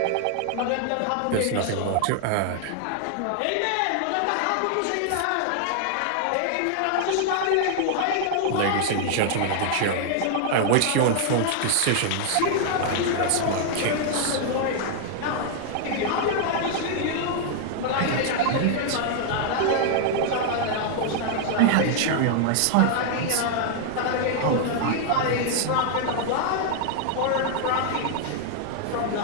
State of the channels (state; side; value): different; both; correlation 0.00